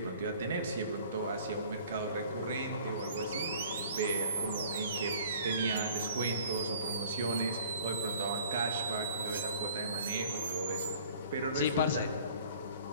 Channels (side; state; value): both; inverted; correlation -0.50